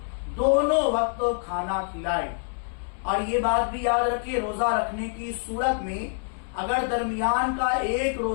دونوں وقت کھانا کھلائے۔ اور یہ بات بھی یاد رکھے، روزہ رکھنے کی صورت میں اگر درمیان کا ایک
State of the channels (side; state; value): right; silent; 61 dB below the other